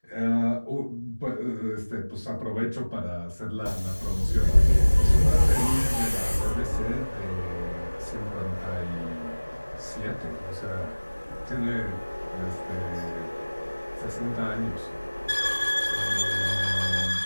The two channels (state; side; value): inverted; both; correlation -1.00